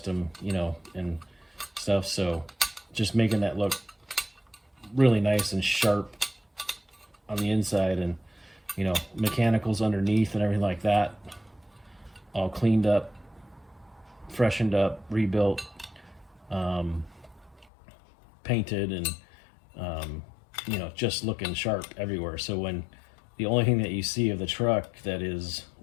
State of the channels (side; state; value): right; drops out; at 17.7 s